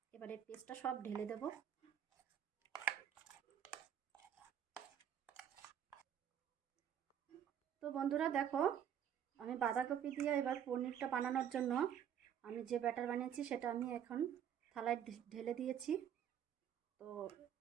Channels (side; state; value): left; quieter; 9.3 dB